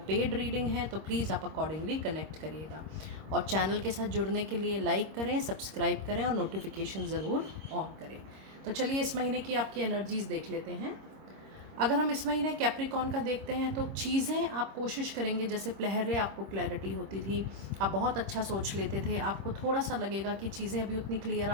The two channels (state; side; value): late; left; 26 ms